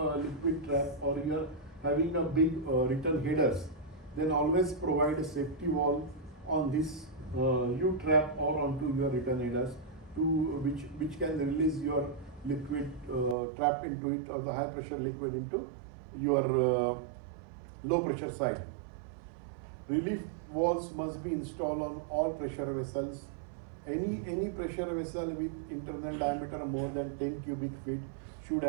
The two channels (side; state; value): left; drops out; at 13.4 s